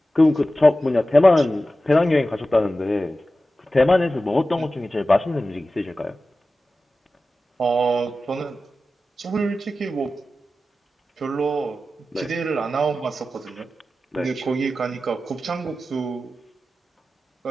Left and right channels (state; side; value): normal; both; correlation 0.94